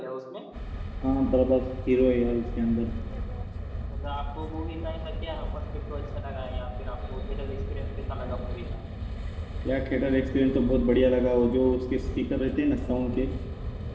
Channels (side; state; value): both; identical; correlation 1.00